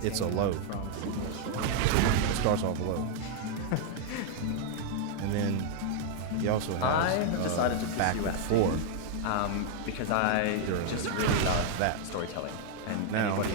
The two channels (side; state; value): both; different; correlation 0.00